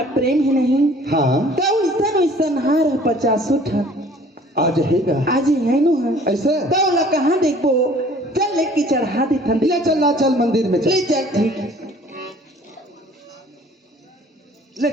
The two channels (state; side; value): normal; both; correlation 0.53